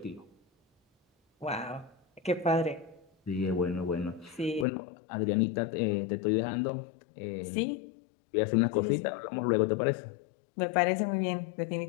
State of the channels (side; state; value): right; drops out; at 4.7 s